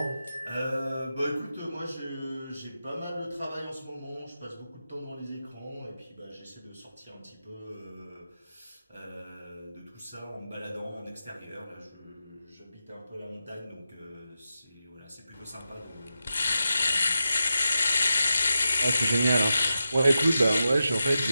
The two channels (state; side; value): inverted; both; correlation -0.89